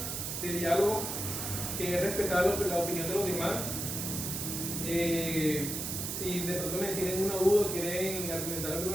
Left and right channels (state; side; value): noise; right; hiss, 3 dB below the sound